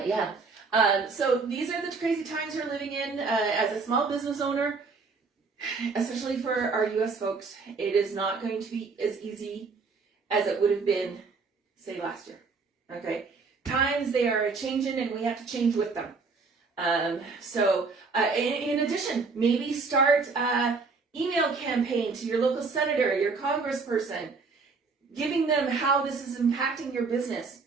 yeah. So these are the crazy times we're living in as a small business owner, especially for our US folks. It is not going to be as easy as it would have been, say, last year. Okay? Times, they are changing and we have to change with them. In addition, maybe start an email campaign to your local senator, your congressperson, giving them how this is impacting your business.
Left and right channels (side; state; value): left; quieter; 4.5 dB